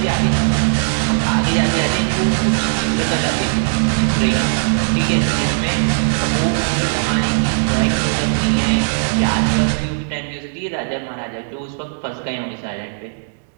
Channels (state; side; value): silent; left; digital silence